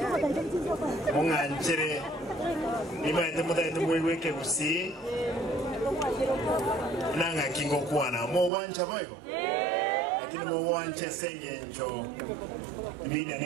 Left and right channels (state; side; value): drops out; left; at 8.5 s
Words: Munganchere imaite mutaite muiweke kusi nanga kingo kuana mo wancha boyo lakini mo wanche senge njo imida